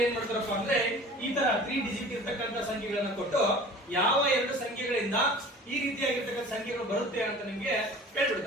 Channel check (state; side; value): normal; both; correlation 0.43